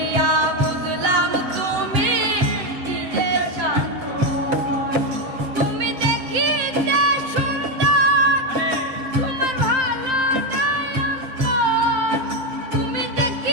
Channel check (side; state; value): left; late; 7.7 ms